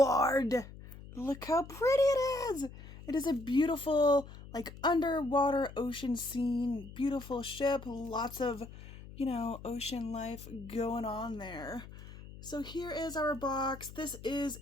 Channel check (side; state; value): left; noise; hum, 15 dB below the sound